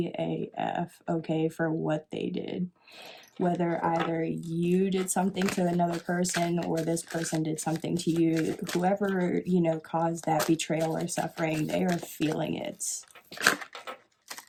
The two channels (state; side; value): identical; both; correlation 1.00